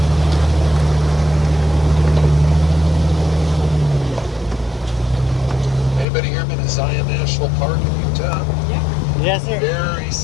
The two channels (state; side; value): drops out; right; at 6.1 s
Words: Anybody here been to Zion National Park in Utah? Yeah. Yes, sir. Very